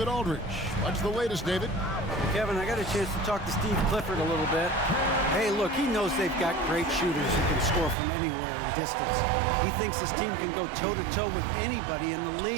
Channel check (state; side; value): drops out; left; at 8.0 s